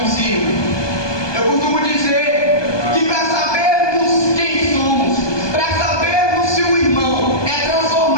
em cima? Eu costumo dizer que para sabermos quem somos, para sabermos se o irmão é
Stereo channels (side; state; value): right; late; 1.2 ms